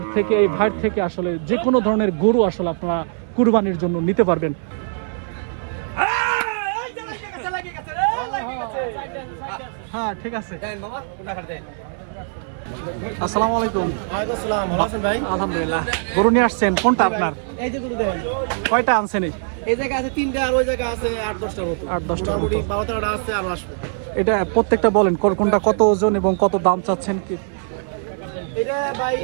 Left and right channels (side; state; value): left; silent; 65 dB below the other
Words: থেকে এই ভাইয়ের থেকে আসলে যে কোনো ধরনের গরু আসলে আপনারা কুরবানির জন্য নিতে পারবেন। হ্যাঁ ঠিক আছে। আসসালামু আলাইকুম। আসসালাম, ভালো আছেন ভাই? আলহামদুলিল্লাহ। গরু নিয়ে আসছেন কোনটা আপনার? এই যে গরু দেখেন, কয়টা আনছেন? এই জায়গা আছে 3টা আর ওই জায়গা আছে 8-10টার মতো। 8-10টার মতো। মোটামুটি 12-13টা আছে আর আসবে। এটা প্রত্যেকটা বলেন কোনটা কত ওজন এবং কত দাম চাচ্ছেন কি? এটা ভাই